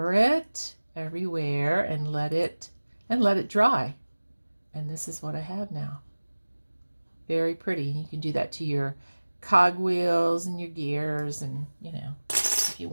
it everywhere and let it dry. And this is what I have now. Very pretty. You can do that to your cogwheels and your gears, and you know, if you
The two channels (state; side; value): inverted; both; correlation -1.00